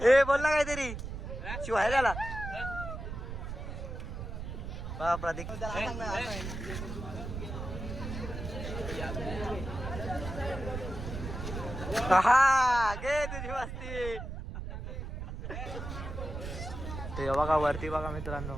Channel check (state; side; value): noise; right; rumble, 7 dB below the sound